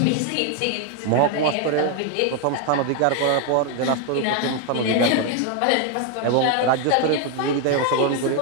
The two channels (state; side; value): different; both; correlation 0.01